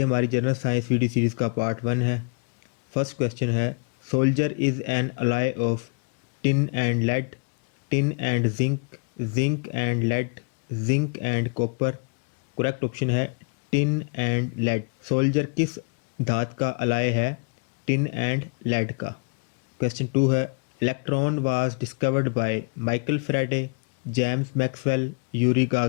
हमारी जनरल साइंस वीडियो सीरीज़ का पार्ट 1 है। फर्स्ट क्वेश्चन है, solder is an alloy of tin and lead, tin and zinc, zinc and lead, zinc and copper. Correct option है टिन एंड लेड। सोल्जर किस धात का अलाय है? टिन एंड लेड का। क्वेश्चन 2 है, electron was discovered by Michael Faraday, James Maxwell, Yuri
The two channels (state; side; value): quieter; right; 35.1 dB